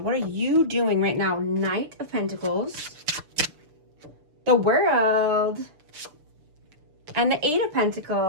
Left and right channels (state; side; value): late; left; 6.8 ms